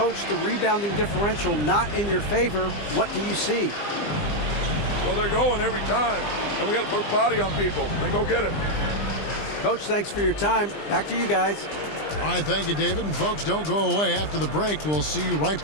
the rebounding differential not in your favor. What do you see? Well, they're going every time, and we got to put a body on people and go get it. Coach, thanks for your time. Back to you guys. All right, thank you, David. And folks, don't go away. After the break, we'll see you right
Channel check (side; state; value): right; late; 20 ms